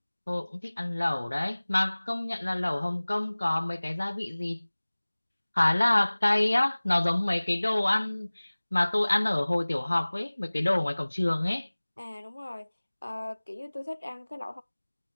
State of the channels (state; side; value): inverted; both; correlation -1.00